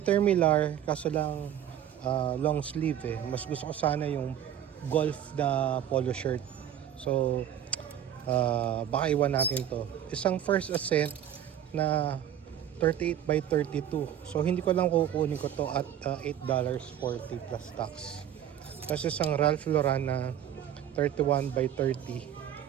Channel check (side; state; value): left; quieter; 10.3 dB